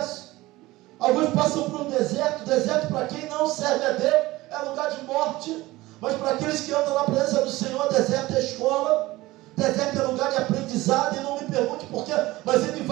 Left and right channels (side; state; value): left; quieter; 18.8 dB